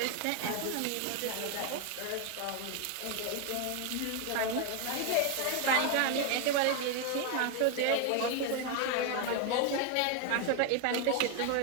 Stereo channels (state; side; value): different; both; correlation 0.01